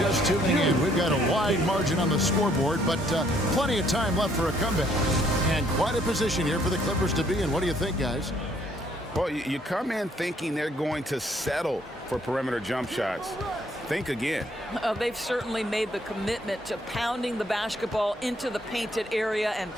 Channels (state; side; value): normal; both; correlation 0.66